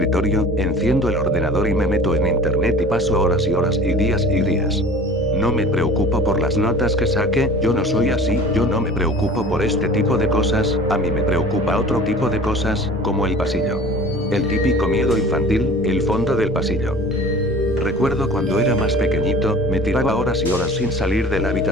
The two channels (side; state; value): both; normal; correlation 0.43